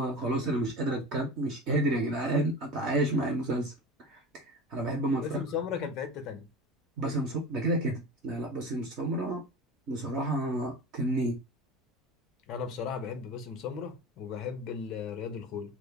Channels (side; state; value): both; normal; correlation 0.32